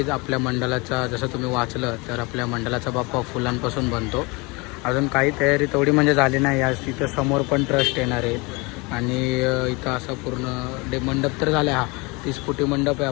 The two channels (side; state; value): right; quieter; 26.8 dB